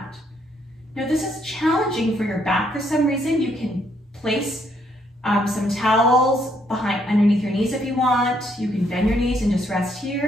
Now this is challenging for your back for some reason. You can place some towels underneath your knees if you want. You can bend your knees and just rest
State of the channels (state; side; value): normal; both; correlation 0.71